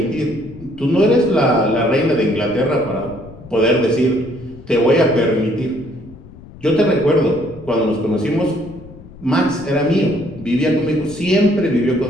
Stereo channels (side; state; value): left; noise; rumble, 19 dB below the sound